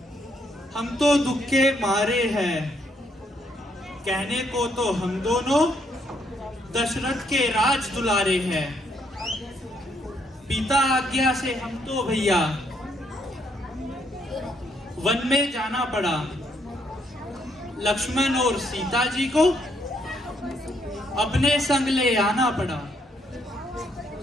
हम तो दुख के मारे हैं। कहने को तो हम दोनों दशरथ के राज दुलारे हैं। पिता आज्ञा से हम तो भैया वन में जाना पड़ा। लक्ष्मण और सीता जी को अपने संग ले आना पड़ा।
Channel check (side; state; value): both; normal; correlation 0.72